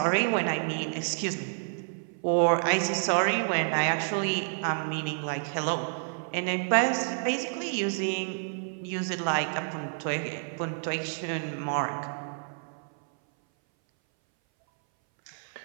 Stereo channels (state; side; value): silent; left; 58 dB below the other